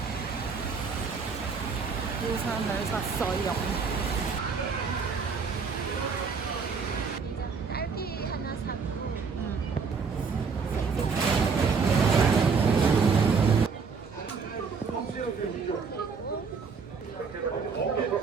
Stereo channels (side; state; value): left; quieter; 5.3 dB